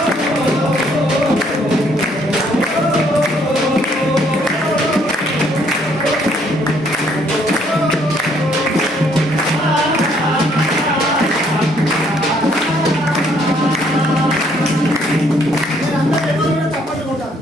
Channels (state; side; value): normal; both; correlation 0.66